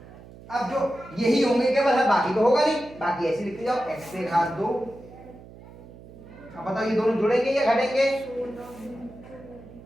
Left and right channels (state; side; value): noise; right; hum, 19 dB below the sound